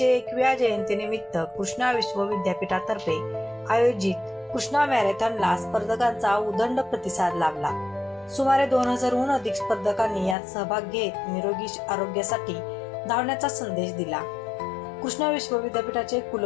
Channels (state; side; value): drops out; right; at 10.4 s